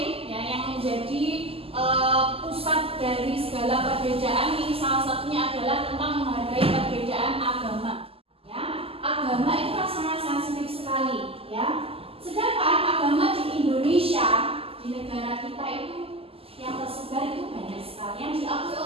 ya, yang menjadi pusat dari segala perbedaan. Ini salah satunya adalah tentang menghargai perbedaan agama. Ya, agama itu sangat sensitif sekali. Ya, sedangkan agama di Indonesia, di negara kita itu yang tersebar itu banyak sekali, yang diakui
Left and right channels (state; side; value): late; left; 0.28 ms